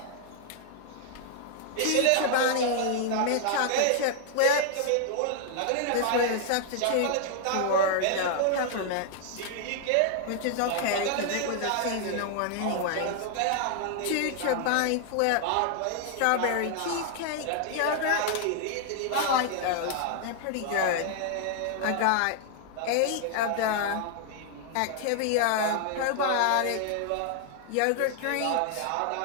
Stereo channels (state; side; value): different; both; correlation 0.00